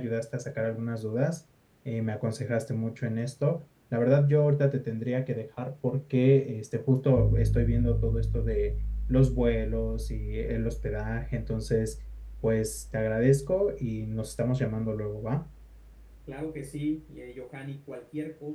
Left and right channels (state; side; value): identical; both; correlation 1.00